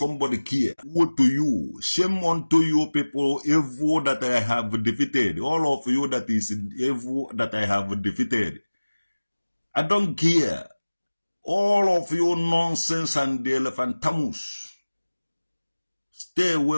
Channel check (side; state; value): both; inverted; correlation -1.00